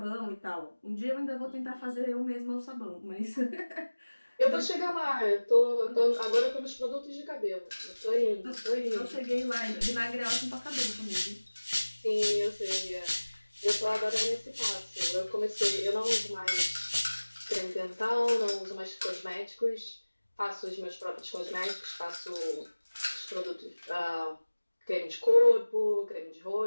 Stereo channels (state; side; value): inverted; both; correlation -1.00